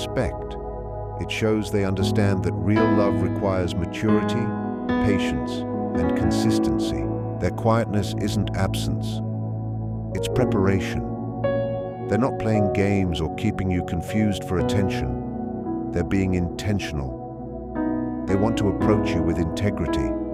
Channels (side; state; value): both; identical; correlation 1.00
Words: It shows they understand that real love requires maturity, patience, and consistency. Their quietness isn't absence. It's preparation. They're not playing games or keeping you confused for attention. They're being intentional. They want to approach you with integrity.